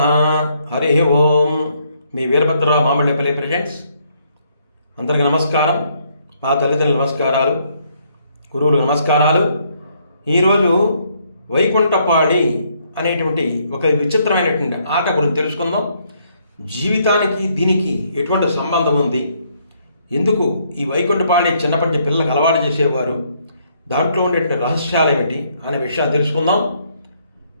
హరి ఓం. మీ వీరభద్రరావు మామిళ్ళపల్లి ప్రజెంట్స్. అందరికీ నమస్కారం. మా తల్లిదండ్రులు నమస్కారాలు, గురువులు నమస్కారాలు. ఈరోజు వైకుంఠపాళి అనేటువంటి ఒక విచిత్రమైనటువంటి ఆట గురించి తెలుసుకుందాం. జీవితానికి దీనికి ఎటువంటి సంబంధం ఉంది, ఎందుకు ఈ వైకుంఠపాళి చిన్నప్పటి పిల్లలకు అలవాటు చేసేవారు, దాంట్లో ఉండే రహస్యాలు ఏమిటి అనే విషయాన్ని తెలుసుకుందాం.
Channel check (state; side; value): inverted; both; correlation -0.70